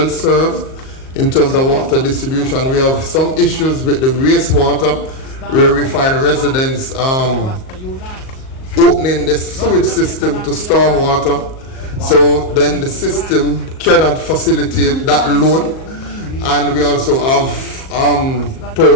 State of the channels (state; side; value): late; right; 38 ms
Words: served in terms of water distribution. We have some issues with the wastewater, where we find residents opening the sewage system to storm water. So then the system cannot facilitate that load. And we also have